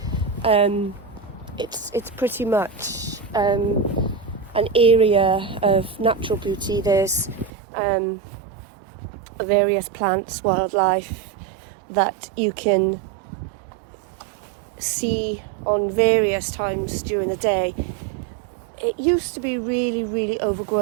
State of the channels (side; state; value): left; drops out; at 7.5 s